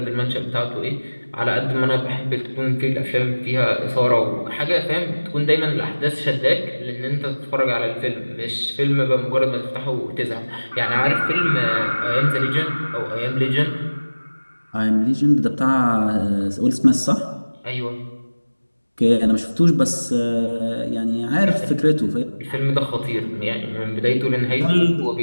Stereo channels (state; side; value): inverted; both; correlation -1.00